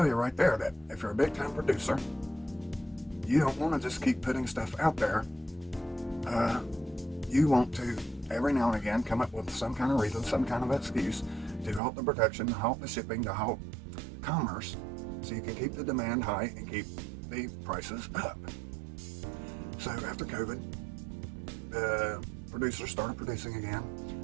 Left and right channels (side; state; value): left; drops out; at 11.8 s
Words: you right there that if you're a big time producer, you don't want to just keep putting stuff out there. You want to, every now and again, come up with some kind of reason, some kind of excuse to halt the production, to halt the shipping, to halt commerce, so you can keep the demand high and keep the prices up. So after COVID, the producers started producing again.